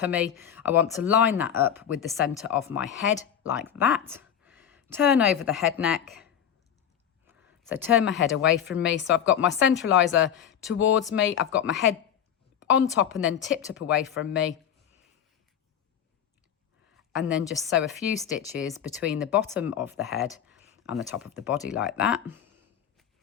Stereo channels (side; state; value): right; quieter; 9.1 dB